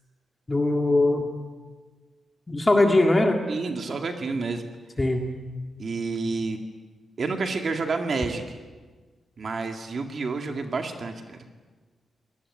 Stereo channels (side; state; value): both; normal; correlation 0.91